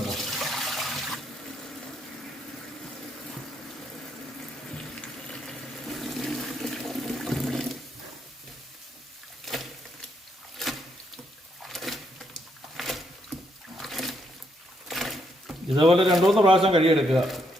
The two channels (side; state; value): both; normal; correlation 0.76